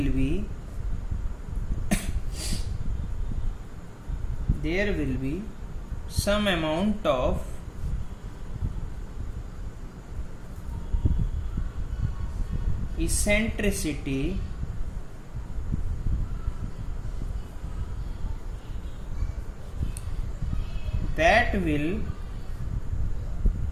be some amount of eccentricity that will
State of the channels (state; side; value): identical; both; correlation 1.00